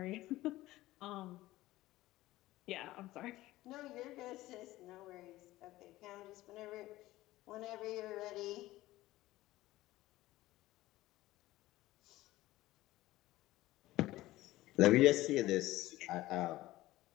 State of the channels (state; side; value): quieter; right; 17.0 dB